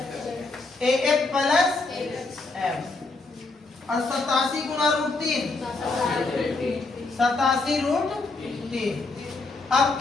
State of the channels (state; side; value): quieter; right; 3.5 dB